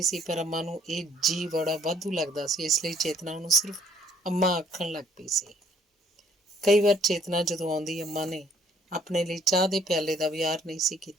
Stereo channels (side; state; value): both; normal; correlation 0.62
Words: ਸੀ, ਪਰ ਅੰਮਾ ਨੂੰ ਇਹ ਜੀ ਬੜਾ ਵਾਧੂ ਲੱਗਦਾ ਸੀ, ਇਸ ਲਈ ਚੇਤਨਾ ਉਹਨੂੰ ਸਿਰਫ ਅੰਮਾ ਆਖਣ ਲੱਗ ਪਈ ਸੀ। ਕਈ ਵਾਰ ਚੇਤਨਾ ਜਦੋਂ ਆਉਂਦੀ, ਅੰਮਾ ਨੇ ਆਪਣੇ ਲਈ ਚਾਹ ਦੇ ਪਿਆਲੇ ਦਾ ਵਿਹਾਰ ਨਹੀਂ ਸੀ